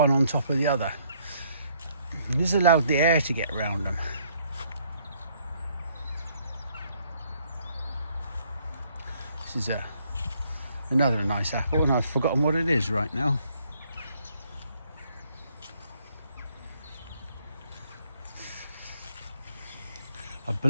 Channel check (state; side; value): inverted; both; correlation -0.67